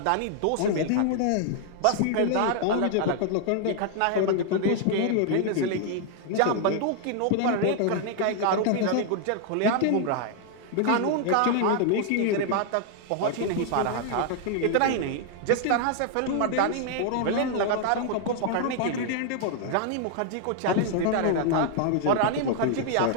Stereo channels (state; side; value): different; both; correlation 0.00